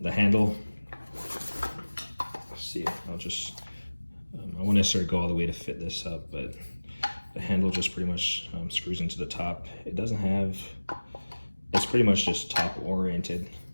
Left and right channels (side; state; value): both; inverted; correlation -1.00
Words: handle. Let's see. I won't necessarily go all the way to fit this up, but the handle just pretty much screws into the top. It doesn't have. It's pretty much just top oriented,